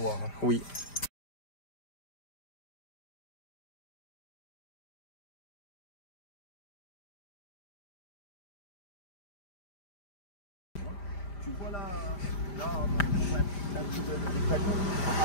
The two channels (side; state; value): right; late; 5.0 ms